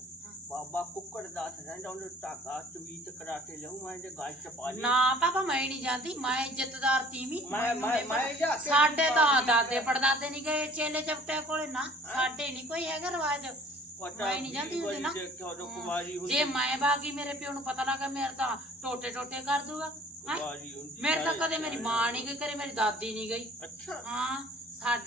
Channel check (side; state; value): both; normal; correlation 0.51